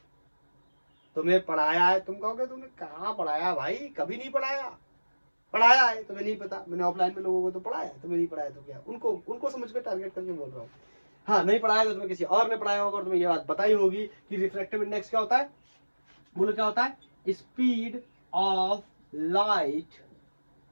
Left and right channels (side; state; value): both; inverted; correlation -1.00